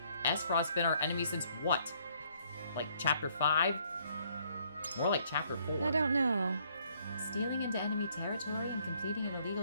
Aesfrost's been our enemy since what? Like chapter 5? More like chapter 4. I don't know. Stealing into enemy territory and completing an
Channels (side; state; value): both; inverted; correlation -0.67